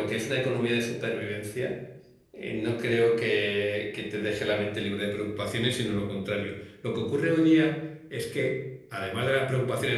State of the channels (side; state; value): both; identical; correlation 1.00